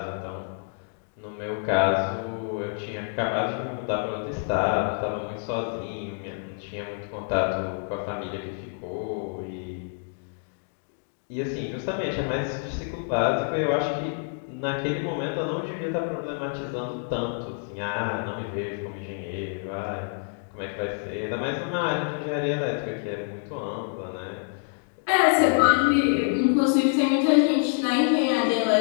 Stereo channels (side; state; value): right; silent; 59 dB below the other